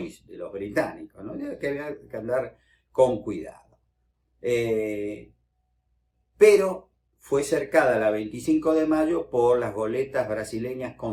de los británicos, ¿no? Que había que andar con cuidado. Pero fue cercada la 25 de mayo por las goletas brasileñas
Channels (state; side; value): identical; both; correlation 1.00